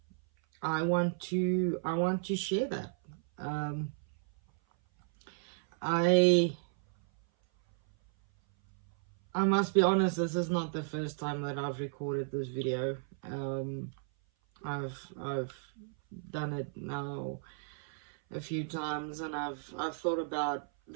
I want to share that. I must be honest, this is not the first time that I've recorded this video. I've done it now a few times, and I've thought about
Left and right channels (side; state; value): left; silent; 55 dB below the other